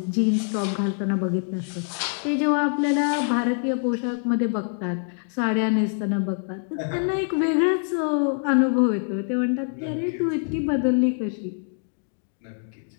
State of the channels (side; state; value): right; silent; 57 dB below the other